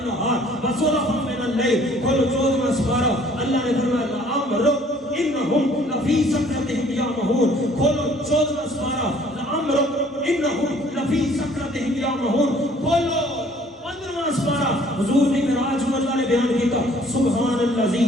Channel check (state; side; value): normal; both; correlation 0.57